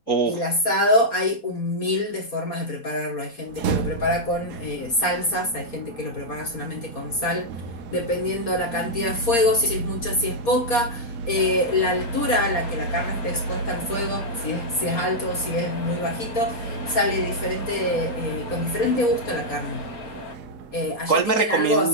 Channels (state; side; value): late; right; 4.3 ms